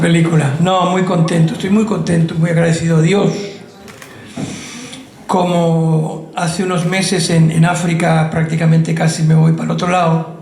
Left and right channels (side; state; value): both; identical; correlation 1.00